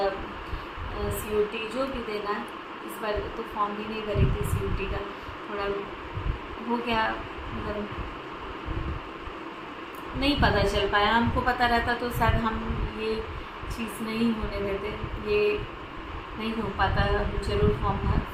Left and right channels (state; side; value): identical; both; correlation 1.00